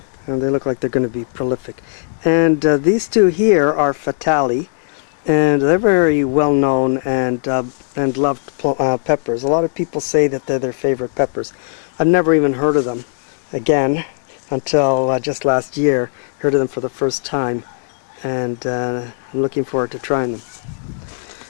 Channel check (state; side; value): silent; right; digital silence